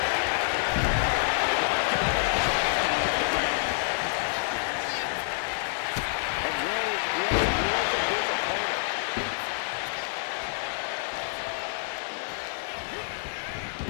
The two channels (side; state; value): right; silent; 59 dB below the other